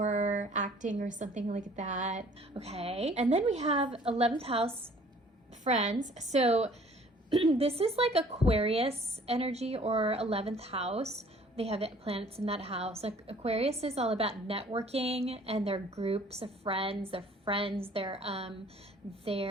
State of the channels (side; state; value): both; normal; correlation 0.54